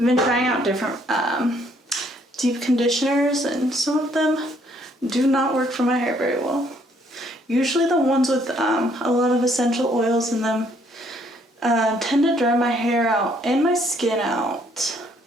trying out different deep conditioners, and some of them do not work for my hair very well. Usually the ones with a lot of essential oils in them tend to dry my hair out and my skin out,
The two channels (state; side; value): normal; both; correlation 0.66